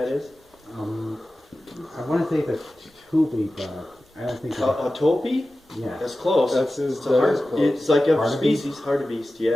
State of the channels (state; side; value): normal; both; correlation 0.95